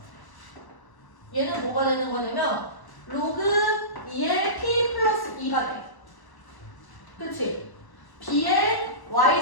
얘는 뭐가 되는 거냐면 로그 2의 P 플러스 2가 돼. 그치? B의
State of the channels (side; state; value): right; late; 1.0 ms